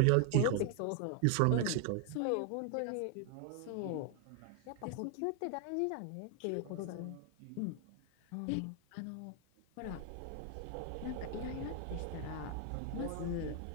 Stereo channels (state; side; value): different; both; correlation 0.00